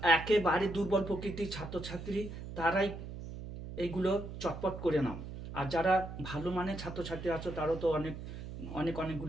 একেবারে দুর্বল প্রকৃতির ছাত্রছাত্রী, তারাই এইগুলো চটপট করে নাও। আর যারা ভালো মানের ছাত্রছাত্রী আছো, তারাও তো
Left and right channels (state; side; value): noise; right; hum, 9 dB below the sound